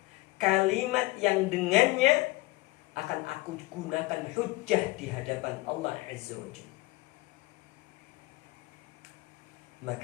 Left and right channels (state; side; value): quieter; right; 21.4 dB